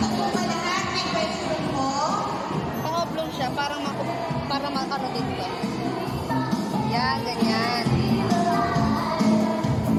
po ba lahat? May question po? Pang-oblong siya, parang para maano din ito. Yan, ganyan.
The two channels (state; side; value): identical; both; correlation 1.00